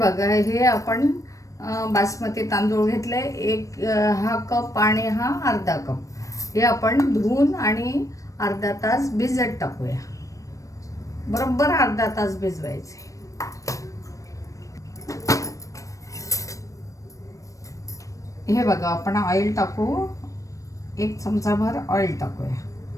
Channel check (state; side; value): late; right; 0.16 ms